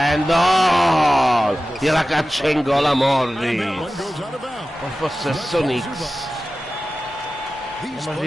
Gliela caccia in gola Morris. Con possesso Knicks. Andiamo a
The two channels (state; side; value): normal; both; correlation 0.95